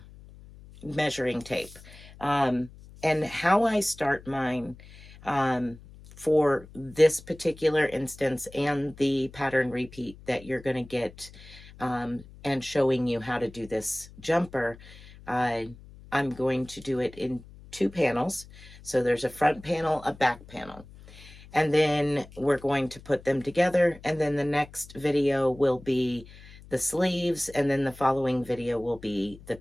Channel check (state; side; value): noise; left; hum, 20 dB below the sound